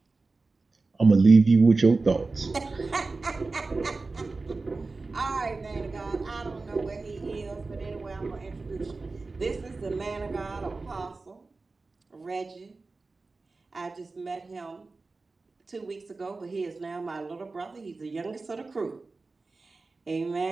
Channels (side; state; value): left; quieter; 3.7 dB